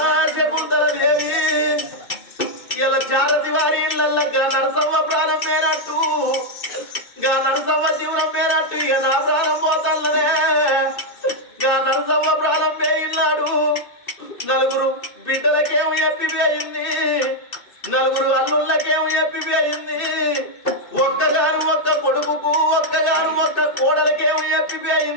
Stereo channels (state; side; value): late; right; 2.6 ms